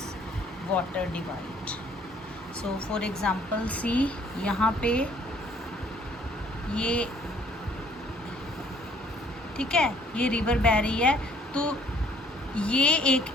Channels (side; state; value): both; normal; correlation 0.60